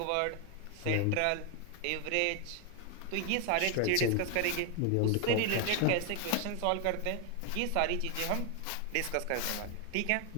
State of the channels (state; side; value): different; both; correlation 0.00